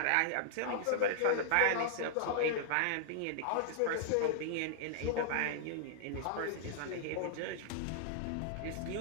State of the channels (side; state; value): both; different; correlation -0.01